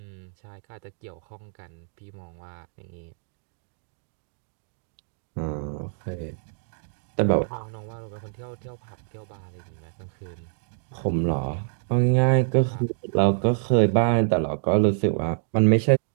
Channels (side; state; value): left; silent; digital silence